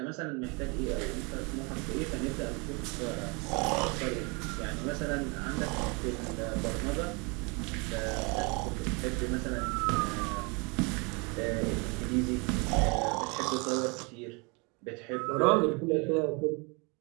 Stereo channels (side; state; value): left; quieter; 30.7 dB